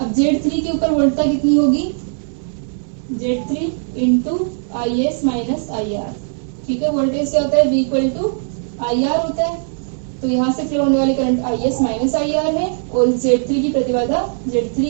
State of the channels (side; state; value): left; silent; digital silence